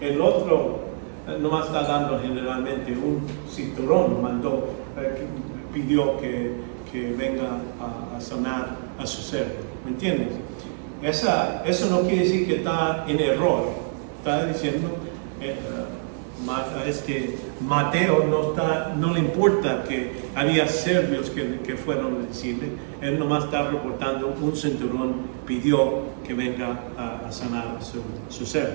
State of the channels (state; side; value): silent; left; digital silence